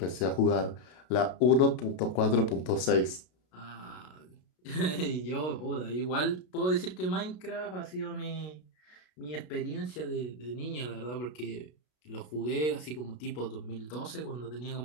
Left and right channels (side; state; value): right; late; 33 ms